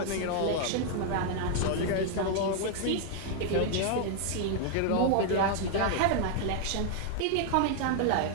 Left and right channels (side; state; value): both; different; correlation 0.00